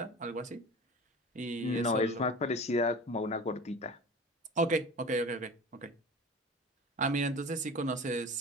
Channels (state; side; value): normal; both; correlation 0.36